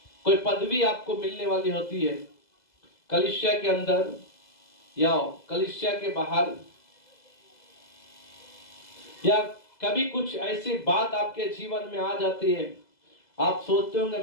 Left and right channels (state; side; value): late; right; 2.0 ms